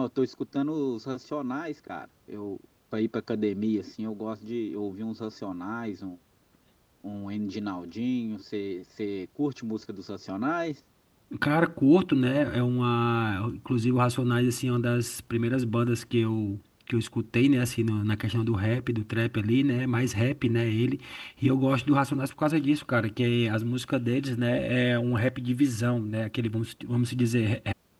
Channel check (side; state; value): both; identical; correlation 1.00